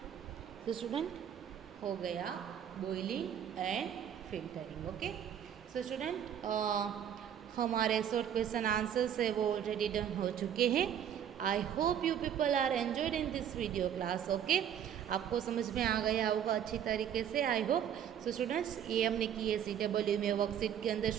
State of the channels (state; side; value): quieter; left; 9.3 dB